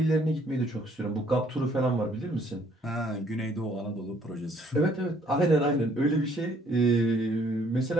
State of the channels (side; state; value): both; normal; correlation 0.63